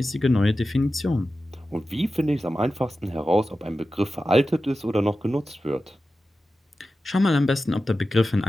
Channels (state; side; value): normal; both; correlation 0.93